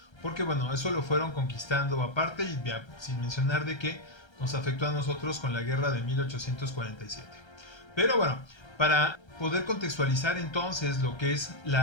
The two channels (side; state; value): right; late; 1.3 ms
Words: porque bueno, eso lo fueron conquistando aparte y sin mencionar de que nos afectó a nosotros con la guerra de 1847. Pero bueno, para poder contextualizar entonces lo que es